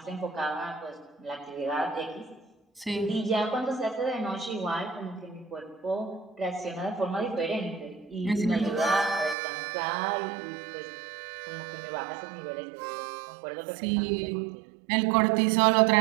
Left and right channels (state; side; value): drops out; left; at 9.3 s